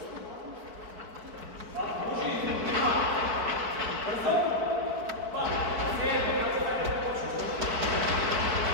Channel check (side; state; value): left; late; 4.5 ms